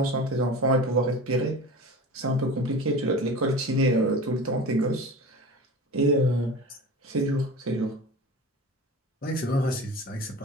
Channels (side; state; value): both; normal; correlation 0.34